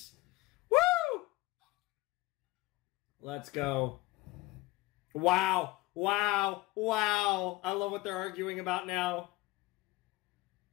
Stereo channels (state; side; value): quieter; right; 19.7 dB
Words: Woo! Let's go. Wow. I love what they're arguing about now.